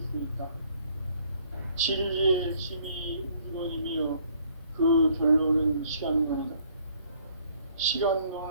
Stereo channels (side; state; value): both; inverted; correlation -0.62